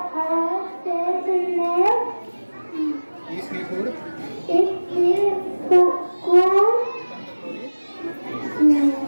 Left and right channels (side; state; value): both; inverted; correlation -1.00